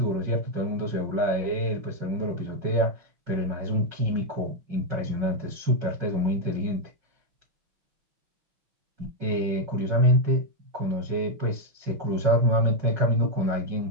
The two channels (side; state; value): left; late; 5.4 ms